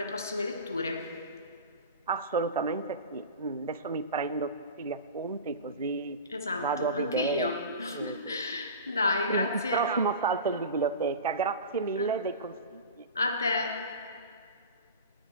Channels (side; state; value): both; inverted; correlation -0.32